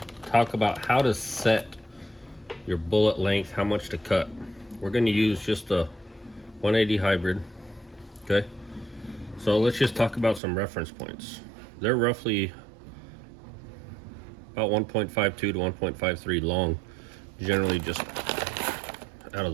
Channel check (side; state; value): left; drops out; at 10.4 s